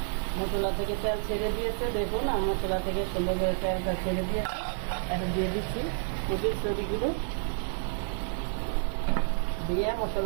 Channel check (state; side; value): silent; left; digital silence